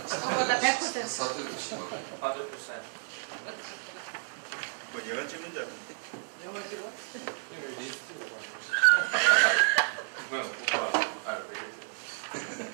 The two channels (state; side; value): silent; left; digital silence